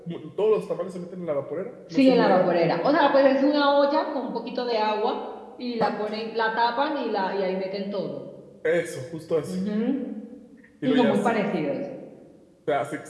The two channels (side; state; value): both; identical; correlation 1.00